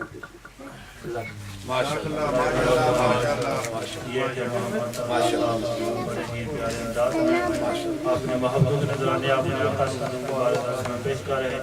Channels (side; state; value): both; identical; correlation 1.00